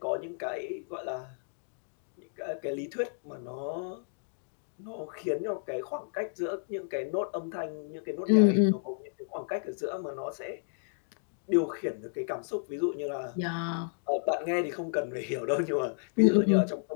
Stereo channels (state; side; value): silent; right; digital silence